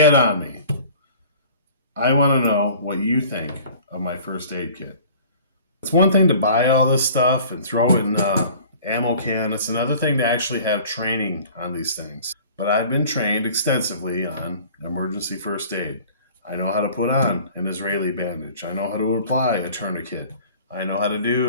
it on me. I want to know what you think of my first aid kit. It's one thing to buy all this stuff and throw it in an ammo can. It's another thing to actually have training on these things. But I've been trained extensively on emergency first aid. I know how to put on an Israeli bandage. I know how to apply a tourniquet. I know how to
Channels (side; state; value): both; inverted; correlation -0.47